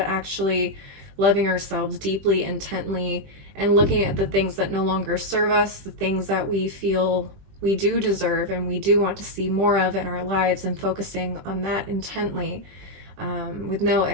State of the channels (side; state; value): left; late; 20 ms